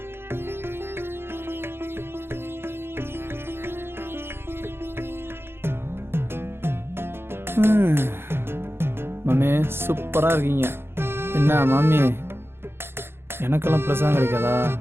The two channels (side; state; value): left; late; 0.11 ms